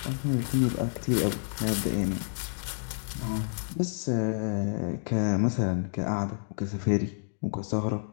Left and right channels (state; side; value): silent; right; digital silence